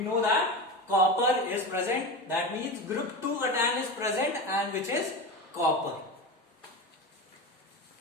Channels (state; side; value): normal; both; correlation 0.24